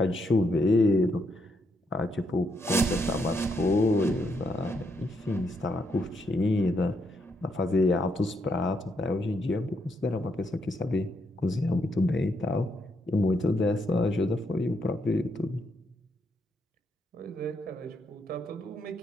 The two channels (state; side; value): normal; both; correlation 0.77